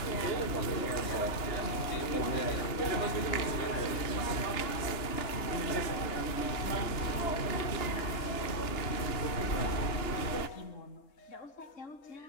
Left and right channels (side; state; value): right; late; 2.9 ms